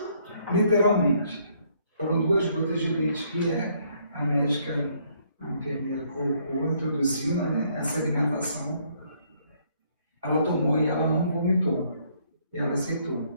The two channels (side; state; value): both; inverted; correlation -0.68